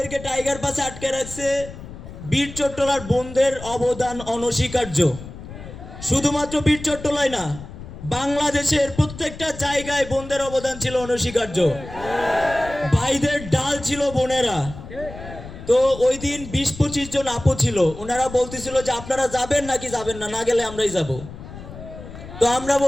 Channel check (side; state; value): left; noise; rumble, 13 dB below the sound